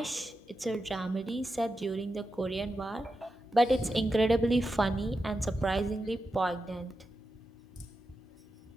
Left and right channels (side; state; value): both; normal; correlation 0.89